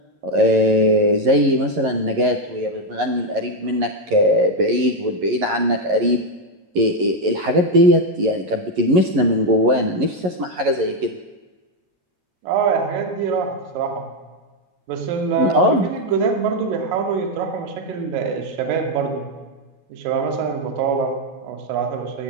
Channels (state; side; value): late; left; 11 ms